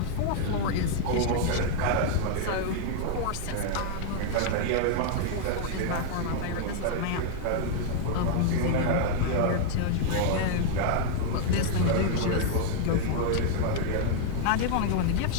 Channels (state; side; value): different; both; correlation 0.00